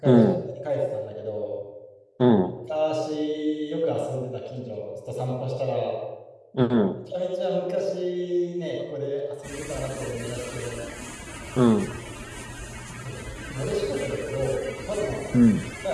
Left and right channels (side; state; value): both; identical; correlation 1.00